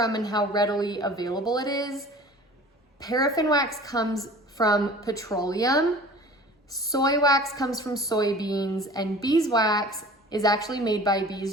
and how readily available it is. Paraffin wax comes from petroleum. Soy wax comes from soybeans, and beeswax is actually made by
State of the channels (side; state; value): both; normal; correlation 0.43